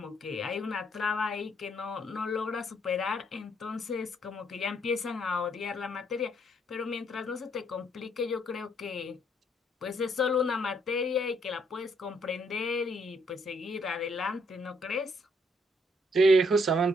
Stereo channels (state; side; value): normal; both; correlation 0.70